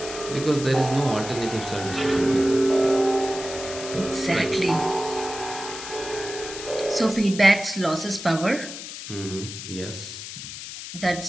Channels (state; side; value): noise; left; hiss, 10 dB below the sound